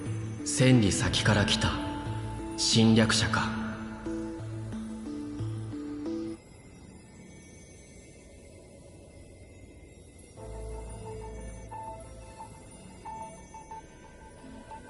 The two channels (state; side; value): identical; both; correlation 1.00